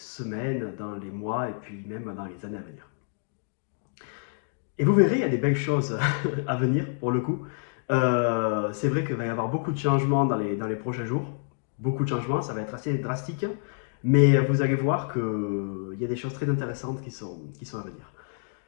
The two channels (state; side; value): silent; right; digital silence